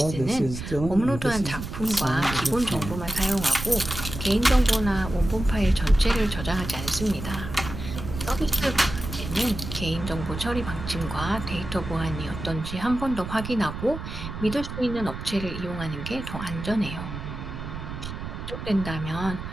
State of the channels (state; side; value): noise; right; rumble, 8 dB below the sound